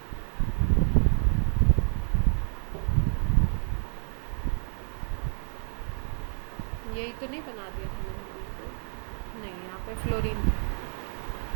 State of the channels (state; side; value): silent; left; 59 dB below the other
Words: यही तो नहीं बना दिया था मैंने बिल्कुल? नहीं, यहाँ पे फ्लोरीन था।